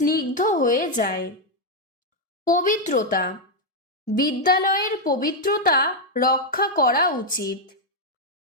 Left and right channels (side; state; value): both; normal; correlation 0.01